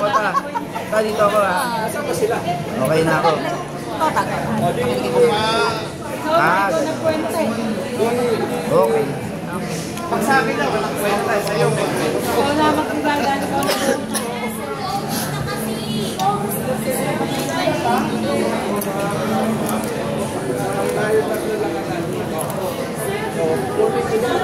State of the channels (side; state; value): left; noise; rumble, 28 dB below the sound